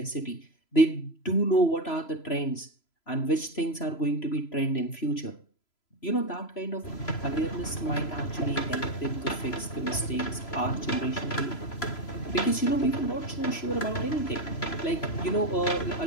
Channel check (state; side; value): late; right; 3.0 ms